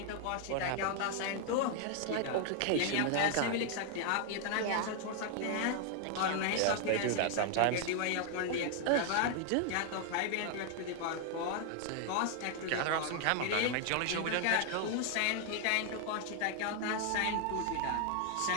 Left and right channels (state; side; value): different; both; correlation 0.00